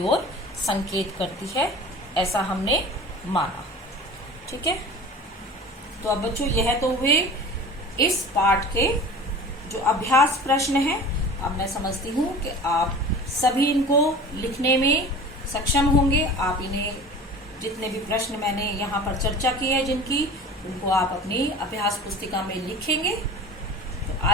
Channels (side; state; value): both; normal; correlation 0.38